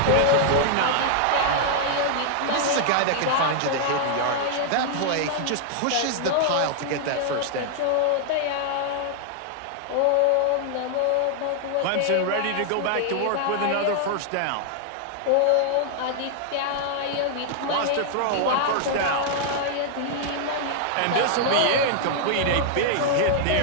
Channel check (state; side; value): different; both; correlation 0.00